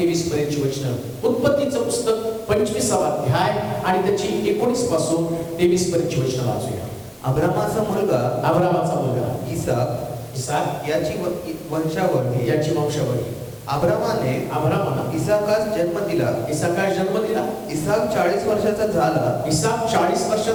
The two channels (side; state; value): both; identical; correlation 1.00